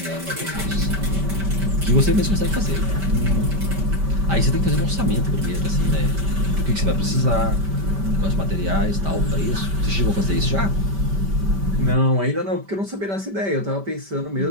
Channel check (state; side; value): late; left; 5.1 ms